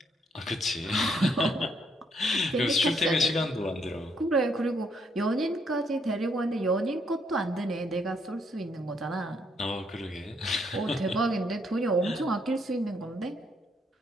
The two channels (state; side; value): normal; both; correlation 0.72